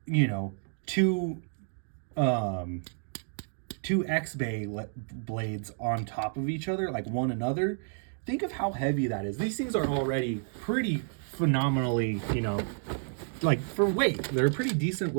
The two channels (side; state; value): left; silent; 58 dB below the other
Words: two X-Bay blades on top of each other, like one another. Think of how heavy that is. These things are already pretty phenomenally, like for weight, they're pretty decent